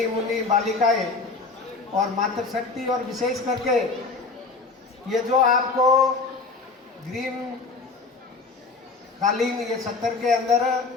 मुन्नी बालिकाएं और मातृशक्ति, और विशेष करके ये जो आपको ग्रीन कालीन ये 70 के अंदर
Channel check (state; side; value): quieter; right; 4.0 dB